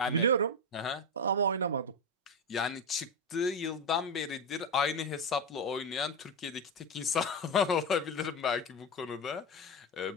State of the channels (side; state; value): both; normal; correlation 0.13